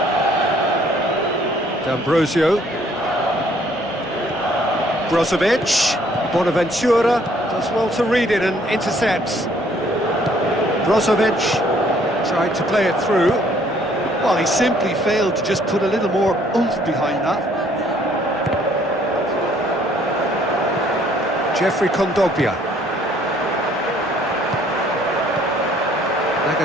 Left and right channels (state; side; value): normal; both; correlation 0.62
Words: D'Ambrosio. Brozovic. Bonaventura does well to read it and intercepts. Brozovic Tried to play it through. Well, he simply failed to just put a little more oomph behind that. Jeffrey Kondogbia.